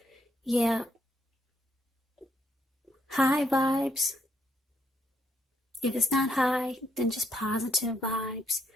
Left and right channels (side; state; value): both; normal; correlation 0.74